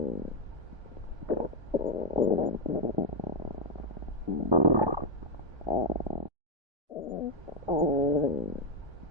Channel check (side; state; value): left; late; 1.3 ms